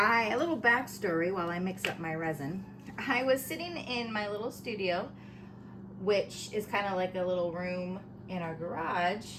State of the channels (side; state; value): both; identical; correlation 1.00